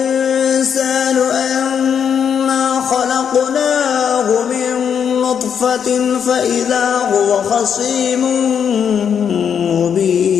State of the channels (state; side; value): quieter; right; 7.7 dB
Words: أنا خلقناه من نطفة فإذا هو خصيم